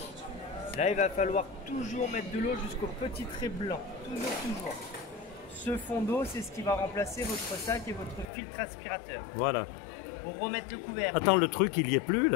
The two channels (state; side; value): drops out; right; at 8.2 s